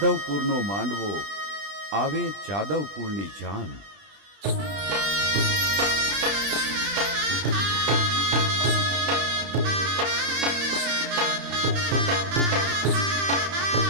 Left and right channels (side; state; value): left; late; 20 ms